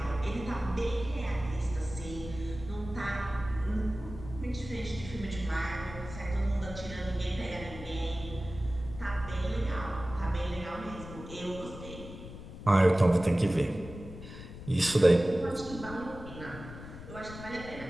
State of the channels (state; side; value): noise; left; rumble, 12 dB below the sound